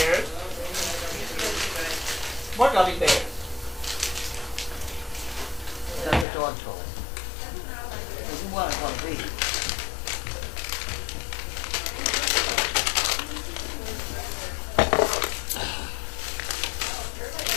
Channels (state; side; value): drops out; right; at 6.2 s